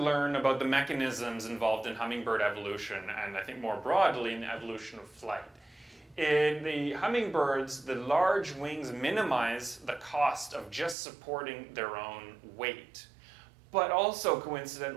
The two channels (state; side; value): drops out; left; at 11.0 s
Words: about the mechanisms involved in hummingbird evolution, and I think more broadly in the evolution of flight. In the hummingbirds, the large wings minimize the cost of just supporting their own weight, but also